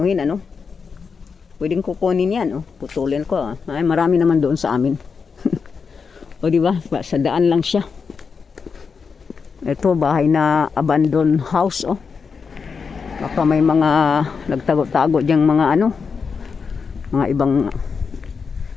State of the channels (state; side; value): quieter; right; 5.6 dB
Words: ano? Pwedeng kukunin yan, putulin ko. Ay, marami naman doon sa amin. O di ba? Sa daan lang siya. Ito bahay na abandoned house, Baka may mga nagtago-tago diyang mga ano, mga ibang.